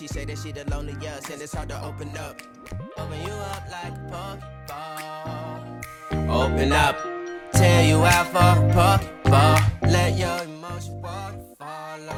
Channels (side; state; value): both; identical; correlation 1.00